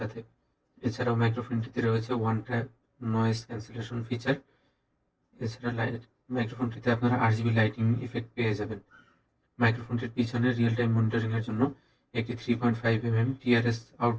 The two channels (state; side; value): identical; both; correlation 1.00